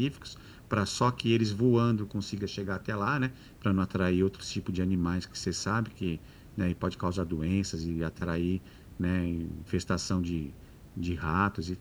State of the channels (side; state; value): both; identical; correlation 1.00